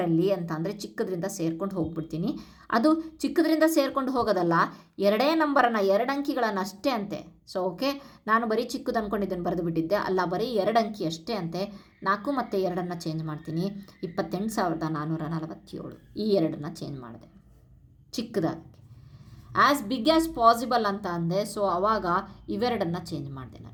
ಅಂತ ಅಂದರೆ ಚಿಕ್ಕದ್ರಿಂದ ಸೇರ್ಕೊಂಡು ಹೋಗ್ಬಿಡ್ತೀನಿ. ಅದು ಚಿಕ್ಕದ್ರಿಂದ ಸೇರ್ಕೊಂಡು ಹೋಗೋದಲ್ಲ, 2 ನಂಬರನ್ನು 2 ಅಂಕಿಗಳನ್ನು ಅಷ್ಟೇ ಅಂತೆ. ಸೊ ಓಕೆ, ನಾನು ಬರೀ ಚಿಕ್ಕದು ಅಂದ್ಕೊಂಡಿದ್ದನ್ನು ಬರೆದು ಬಿಟ್ಟಿದ್ದೆ, ಅಲ್ಲ ಬರೀ 2 ಅಂಕಿ ಅಷ್ಟೇ ಅಂತೆ. 4 ಮತ್ತು 2 ಚೇಂಜ್ ಮಾಡ್ತೀನಿ, 28,447 ಈ 2 ಚೇಂಜ್ ಮಾಡಿದೆ ಚಿಕ್ಕದಾಗಿ. ಆ್ಯಸ್ ಬಿಗ್ ಆ್ಯಸ್ ಪಾಸಿಬಲ್ ಅಂತ ಅಂದೆ. ಸೊ ಆವಾಗ ಇವೆರಡನ್ನು ಚೇಂಜ್ ಮಾಡಿದೆ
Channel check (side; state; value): both; identical; correlation 1.00